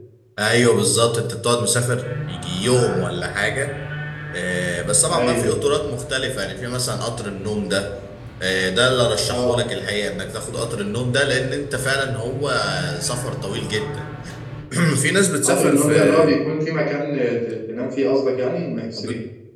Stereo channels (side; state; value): both; identical; correlation 1.00